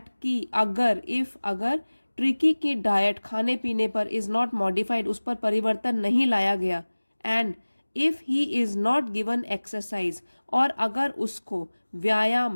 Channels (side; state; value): both; inverted; correlation -1.00